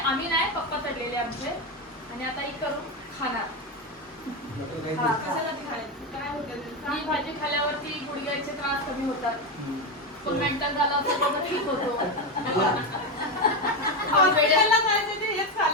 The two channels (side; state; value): both; normal; correlation 0.12